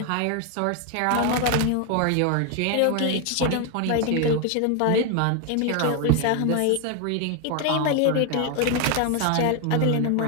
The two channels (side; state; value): both; different; correlation 0.01